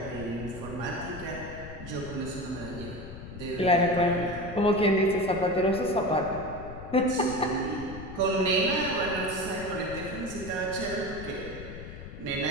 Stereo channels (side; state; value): left; noise; rumble, 12 dB below the sound